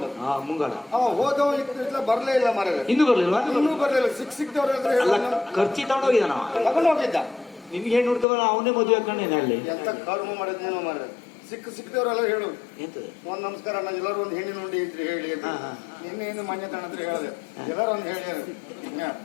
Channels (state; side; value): drops out; right; at 8.2 s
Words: ಮುಂಗಾಡ. ಅವ ಹೋದವ ಇತ್ತು ಬರ್ಲೇ ಇಲ್ಲ ಮರ. ಇನ್ನೂ ಬರ್ಲಿಲ್ವಾ? ಇನ್ನೂ ಬರ್ಲಿಲ್ಲ. ಸಿಕ್ದವ್ರ ಖರ್ಚಿ ತಗೊಂಡೋಗಿದ್ದ ನಾವ ತಗೊಂಡು ಹೋಗಿದ್ದ. ನಿಮ್ಗೆ ಹೆಣ್ಣು ಹುಡ್ಕಬಲ್ಲ ಅವನೇ ಮದುವೆ ಹಾಕೊಂಡೇನೆ ಅಲ್ಲಿ. ಎಂತ ಕರ್ಮ ಮಾಡಿದ್ನೇನೋ ಮಾರ. ಸಿಕ್ದವ್ರೆಲ್ಲ ಹೇಳು ಒಂದ್ ನಮಸ್ಕಾರ ಅಣ್ಣ ಎಲ್ಲರೂ ಒಂದ್ ಹೆಣ್ಣಿನ ಉಂಡಿ ಇದ್ರಿ ಹೇಳಿ ನಿನ್ನೆ ಏನು ಮನೆ ತಣ್ಣತ್ರ ಹೇಳಿದೆ ಎಲ್ಲರೂ ಒಂದ್ ಹೇಳಿ